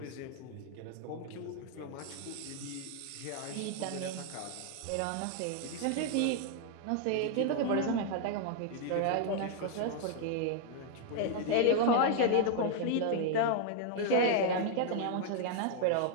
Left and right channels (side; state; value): both; different; correlation 0.00